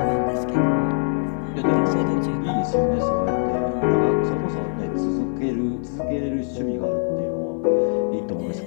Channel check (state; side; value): silent; right; 59 dB below the other